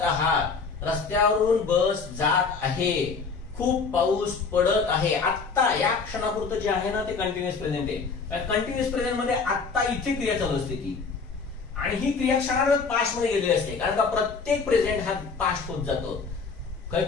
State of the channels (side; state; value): right; quieter; 4.9 dB